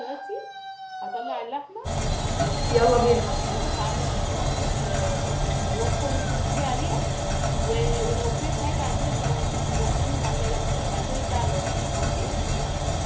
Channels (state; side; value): identical; both; correlation 1.00